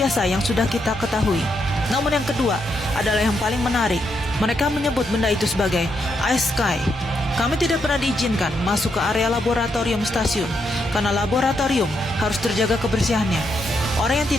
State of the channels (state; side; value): normal; both; correlation 0.80